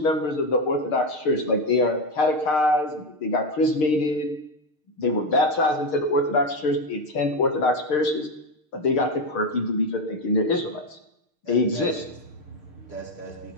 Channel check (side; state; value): right; late; 6.6 ms